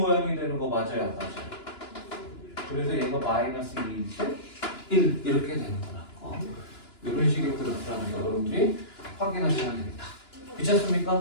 되는 거 맞아요, 안 맞아요? 그래서 얘가 마이너스 2일 때 1 이렇게 되는 거라고. 이런 식의 그래프라는 거 여러분들이 확인하시면 됩니다.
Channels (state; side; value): late; right; 2.9 ms